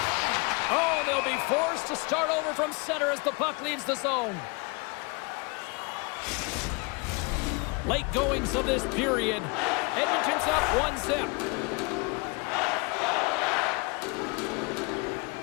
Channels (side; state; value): right; quieter; 29.3 dB